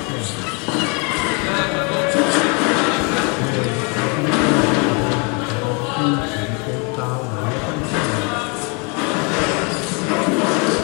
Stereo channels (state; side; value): quieter; right; 33.4 dB